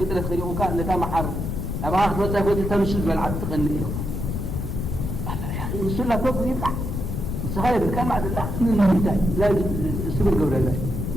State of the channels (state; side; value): noise; left; rumble, 3 dB below the sound